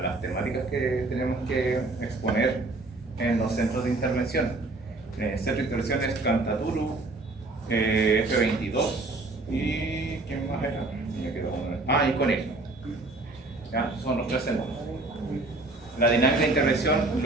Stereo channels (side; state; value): left; quieter; 3.1 dB